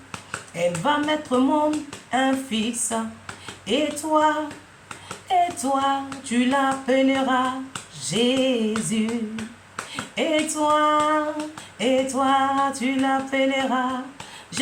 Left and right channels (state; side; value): identical; both; correlation 1.00